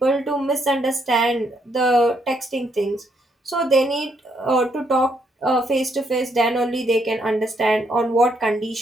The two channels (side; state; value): both; normal; correlation 0.74